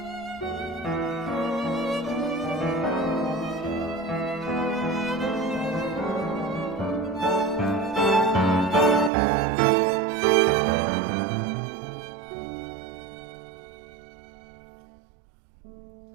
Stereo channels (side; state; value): left; drops out; at 9.1 s